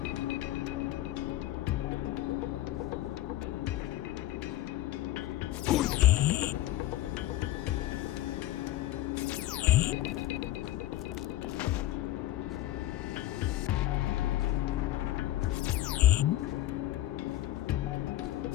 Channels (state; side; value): quieter; right; 14.8 dB